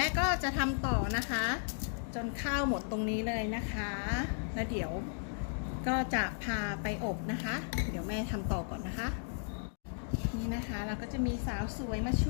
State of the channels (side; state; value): right; silent; digital silence